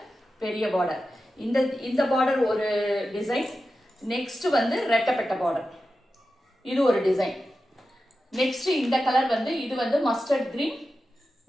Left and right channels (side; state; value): both; normal; correlation 0.92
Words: பெரிய பார்டர். இந்த பார்டர் ஒரு டிசைன். நெக்ஸ்ட் வந்து ரெட்டப்பட்ட பார்டர், இது ஒரு டிசைன். நெக்ஸ்ட் இந்த கலர் வந்து இது வந்து மஸ்டர்ட் கிரீன்,